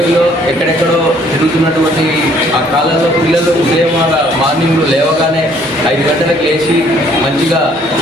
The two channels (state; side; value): normal; both; correlation 0.62